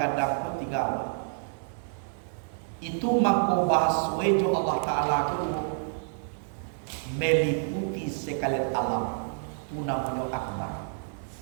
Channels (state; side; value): silent; left; digital silence